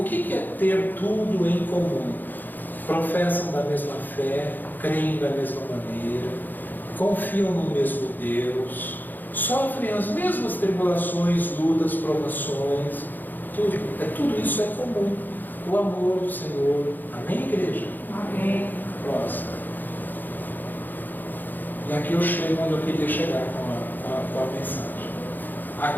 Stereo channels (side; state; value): right; late; 0.087 ms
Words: que é ter tudo em comum? Professam da mesma fé, creem da mesma maneira, confiam no mesmo Deus, sofrem as mesmas tribulações, lutas, provações, tudo isso é comum. O amor do Senhor. Amém, igreja? Amém. Próximo. E aqui eu chego onde eu queria chegar com a mensagem.